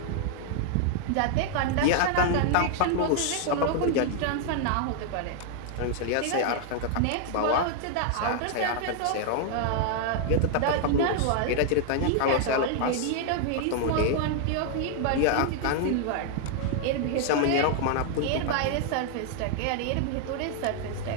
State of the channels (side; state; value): both; different; correlation 0.00